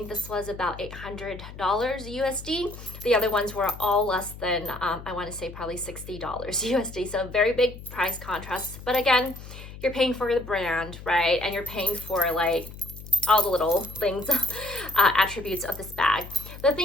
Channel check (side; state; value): left; noise; hum, 14 dB below the sound